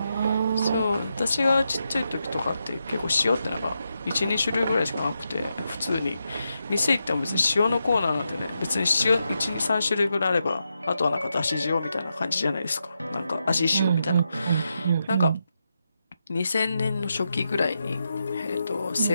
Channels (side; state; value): both; inverted; correlation -0.86